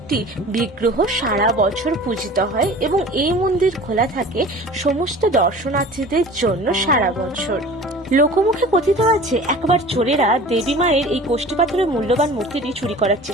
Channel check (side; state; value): both; normal; correlation 0.41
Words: বিগ্রহ সারা বছর পূজিত হয় এবং এই মন্দির খোলা থাকে সমস্ত দর্শনার্থীদের জন্য সারা বছর। লোকমুখে কথিত আছে একবার চোরেরা দেবী মায়ের এই কোষ্ঠী পাথরের মূল্যবান মূর্তিটি চুরি করার